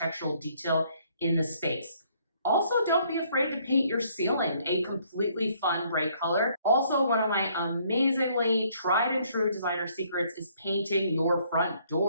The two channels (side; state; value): both; inverted; correlation -0.65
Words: detail in the space. Also, don't be afraid to paint your ceiling a completely fun bright color. Also, one of my amazingly tried and true designer secrets is painting your front